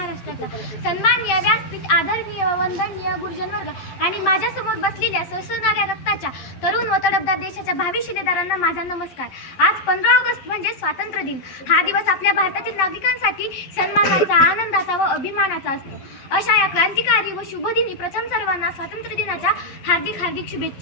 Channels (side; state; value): right; late; 11 ms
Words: सन्माननीय व्यासपीठ, आदरणीय व वंदनीय गुरुजन वर्ग आणि माझ्यासमोर बसलेल्या सळसळणाऱ्या रक्ताच्या तरुण व तडफदार देशाच्या भावी शिलेदारांना माझा नमस्कार. आज 15 ऑगस्ट म्हणजे स्वातंत्र्य दिन. हा दिवस आपल्या भारतातील नागरिकांसाठी सन्मानाचा, आनंदाचा व अभिमानाचा असतो. अशा या क्रांतिकारी व शुभदिनी प्रथम सर्वांना स्वातंत्र्य दिनाच्या हार्दिक हार्दिक